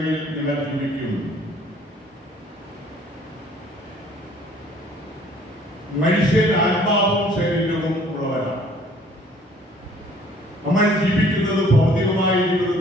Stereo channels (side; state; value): both; normal; correlation 0.57